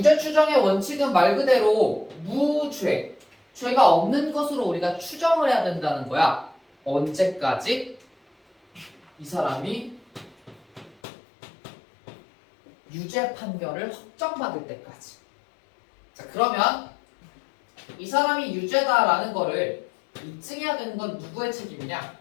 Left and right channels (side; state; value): right; drops out; at 11.0 s